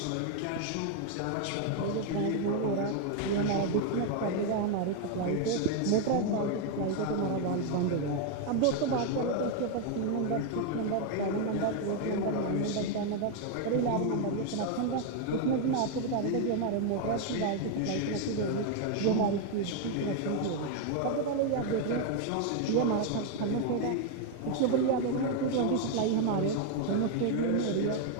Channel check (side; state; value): both; different; correlation 0.01